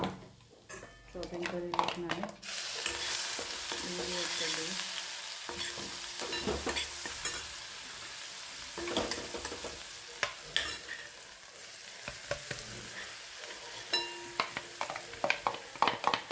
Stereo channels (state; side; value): identical; both; correlation 1.00